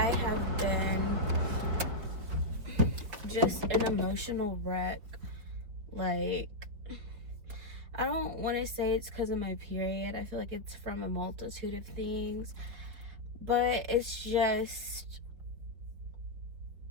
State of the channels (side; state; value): left; late; 5.0 ms